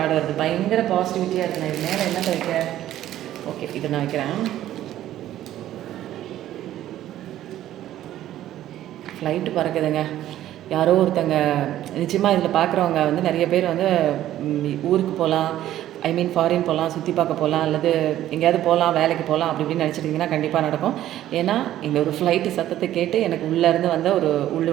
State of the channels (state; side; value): quieter; left; 12.9 dB